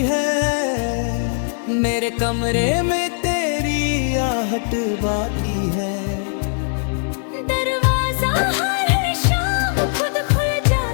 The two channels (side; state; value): right; silent; digital silence